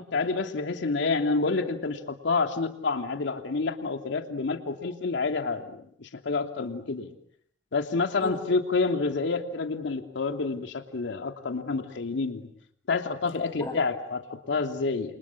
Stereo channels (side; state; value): right; quieter; 3.6 dB